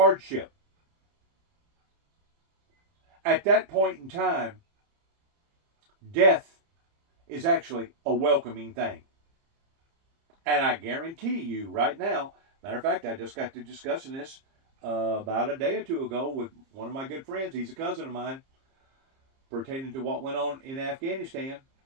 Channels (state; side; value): late; left; 30 ms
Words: at that point in time, death is actually a welcoming thing. And I guarantee you right now, matter of fact, I just got to discussing this about a day or two ago with one of my good friends. He's a cousin of mine, pertaining to what went on in Afghanistan